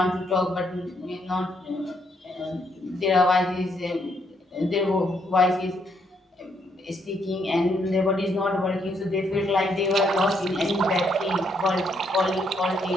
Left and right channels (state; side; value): normal; both; correlation 0.74